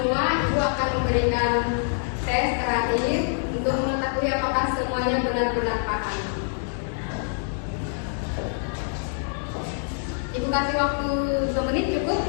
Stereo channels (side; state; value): right; silent; digital silence